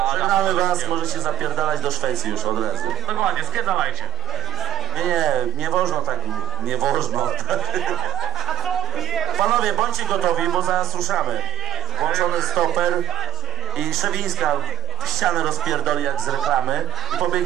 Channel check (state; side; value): quieter; left; 11.3 dB